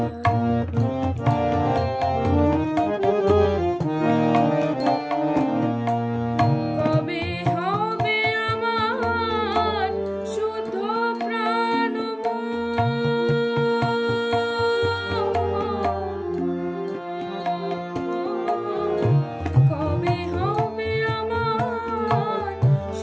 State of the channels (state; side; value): identical; both; correlation 1.00